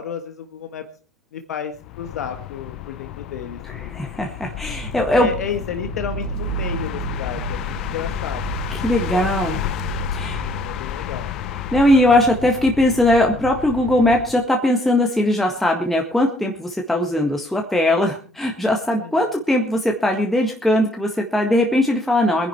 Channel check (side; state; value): both; normal; correlation 0.62